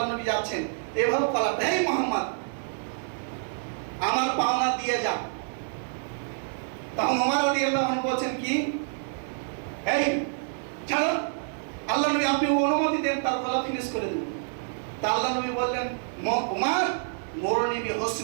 নবী যাচ্ছেন, এভাবে বলা, হে মুহাম্মদ, আমার পাওনা দিয়ে যা। তখন ওমর রাদিয়াল্লাহু আনহু বলছেন কি, এই ছাড়ো, আল্লাহর নবী আপনি অনুমতি দেন তার গলা ফিনিশ করে দেব। তা আল্লাহর নবী বললেন, ওমর, মুরনি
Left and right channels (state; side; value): silent; left; digital silence